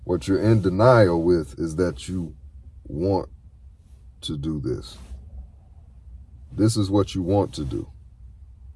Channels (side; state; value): both; identical; correlation 1.00